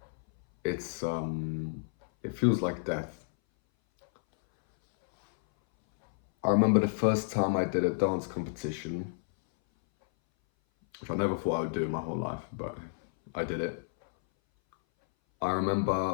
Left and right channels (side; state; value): right; silent; 57 dB below the other